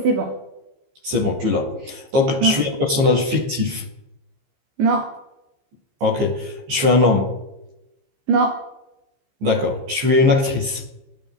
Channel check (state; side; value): late; left; 15 ms